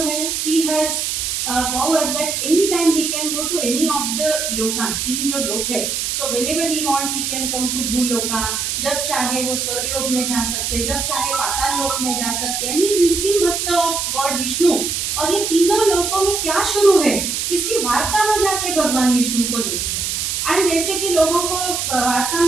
है, he has power that any time he can go to any of the Lucas, तीन जो लोक है। So whenever he want he can come to भूलोका, जब चाहे वो स्वर्गलोक में जा सकते, जब चाहे पाताल लोक में जा सकते हैं। He is निस्सिम भक्त ऑफ गॉड विष्णु। और ये तीनों लोकों में क्या शुरू है, इसकी वार्ता में जाके भगवान विष्णु को देते हैं। एंड जैसे कि लोगों को वार्ता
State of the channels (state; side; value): noise; right; hiss, 1 dB below the sound